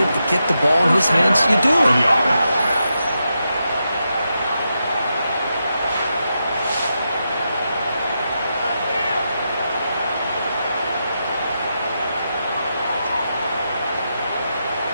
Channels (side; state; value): both; inverted; correlation -0.86